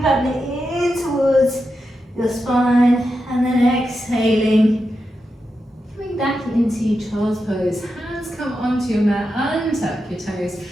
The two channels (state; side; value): normal; both; correlation 0.88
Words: in towards your spine and then exhaling. Coming back into child's pose. Hands come onto your mat, untuck your toes.